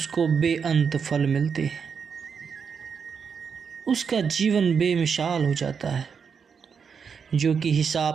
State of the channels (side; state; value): left; quieter; 6.3 dB